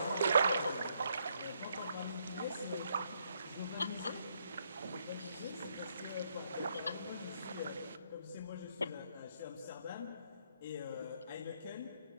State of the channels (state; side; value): inverted; both; correlation -0.73